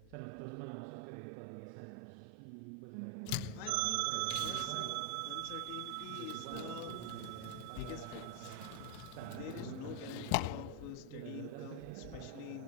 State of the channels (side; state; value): both; different; correlation 0.01